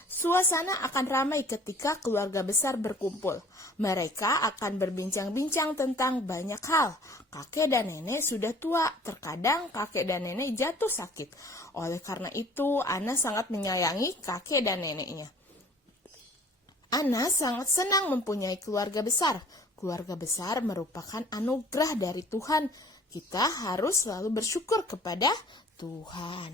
Suasana akan ramai ketika keluarga besar berkumpul. Mereka akan berbincang-bincang tentang banyak hal. Kakek dan nenek sudah tua, terkadang kakek dan nenek jatuh sakit. Oleh karena itu, Ana sangat menyayangi kakek dan neneknya. Ana sangat senang mempunyai keluarga besar. Keluarga besar merupakan anugerah dari Tuhan. Kita harus selalu bersyukur kepada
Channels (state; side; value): normal; both; correlation 0.51